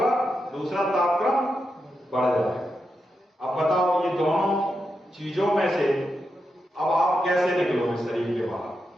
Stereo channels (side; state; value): both; normal; correlation 0.86